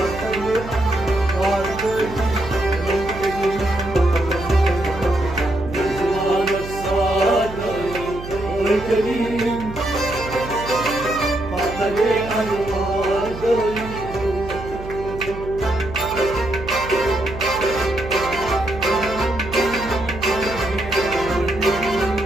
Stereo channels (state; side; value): noise; right; hum, 11 dB below the sound